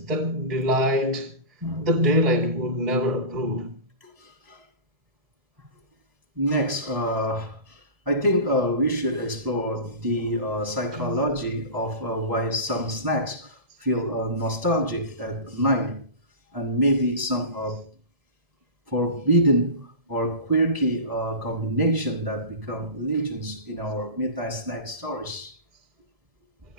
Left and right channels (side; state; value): left; late; 1.7 ms